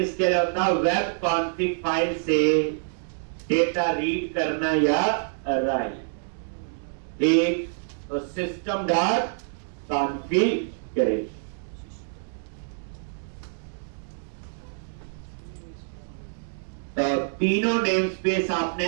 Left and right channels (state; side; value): silent; left; digital silence